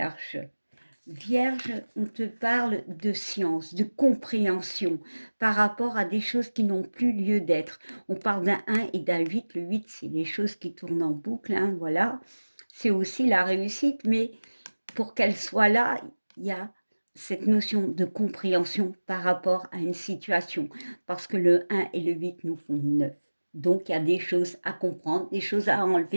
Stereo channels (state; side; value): inverted; both; correlation -1.00